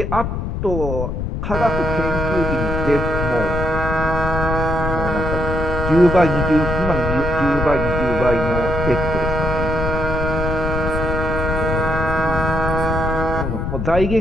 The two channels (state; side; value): noise; left; rumble, 2 dB below the sound